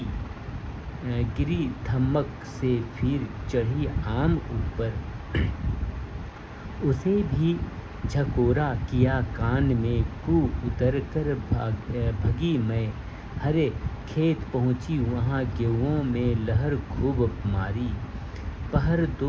धमक से फिर चढ़ी आम ऊपर, उसे भी झकोरा किया कान में, कू उतर कर भगी मैं, हरे खेत पहुँची वहाँ गेहूँ में लहर खूब मारी, पहर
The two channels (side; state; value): both; identical; correlation 1.00